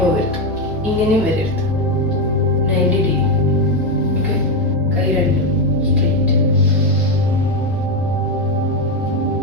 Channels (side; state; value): both; normal; correlation 0.08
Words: പോകരുത്, ഇങ്ങനെയും വരരുത്. 90 ഡിഗ്രി. ഓക്കെ, കൈ രണ്ടും സ്ട്രെയിറ്റ്.